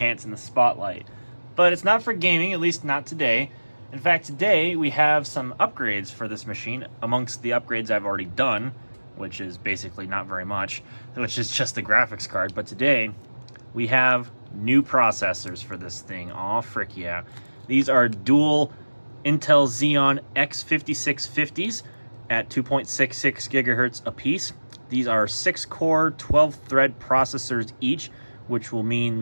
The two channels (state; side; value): inverted; both; correlation -1.00